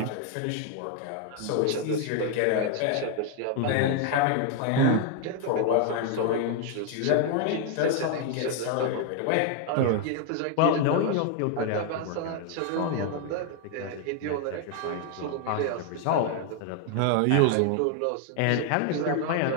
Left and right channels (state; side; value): different; both; correlation 0.00